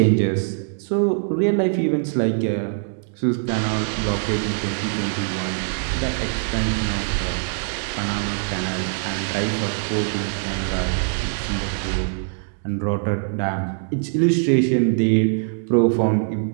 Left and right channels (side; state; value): left; silent; digital silence